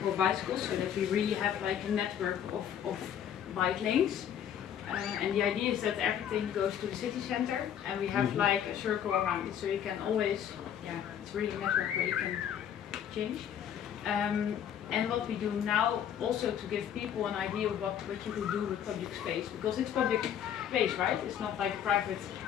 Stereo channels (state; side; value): quieter; right; 9.4 dB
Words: bicycles, so that we really have like a network of bike lanes. And the idea is that everything goes to the city center, and we have like a circle around it, so you can always, it's really a network where you can change. And what we do now, also to give people an idea of what you could do with public space, because it's public space, right? It's not like private